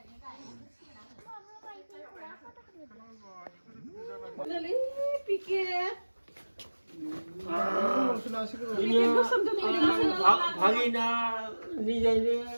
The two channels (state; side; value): inverted; both; correlation -1.00